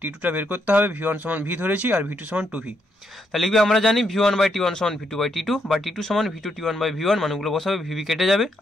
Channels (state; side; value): normal; both; correlation 0.77